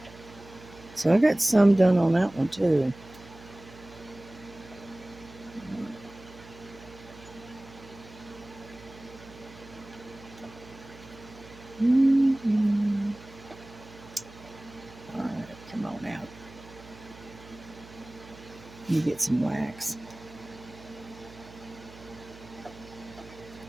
so I got some done on that one too. Mm-hmm. All right, come on out. You get some wax.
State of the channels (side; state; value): right; noise; hum, 19 dB below the sound